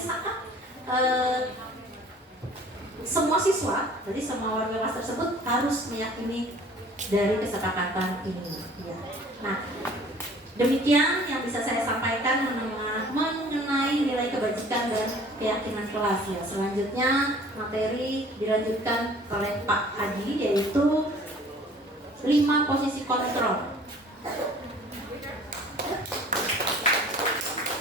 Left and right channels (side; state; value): both; normal; correlation 0.50